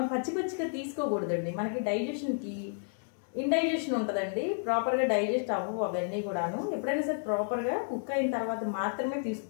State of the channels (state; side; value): silent; right; digital silence